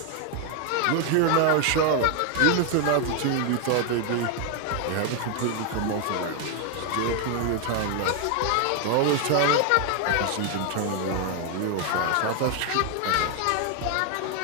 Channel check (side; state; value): both; different; correlation 0.00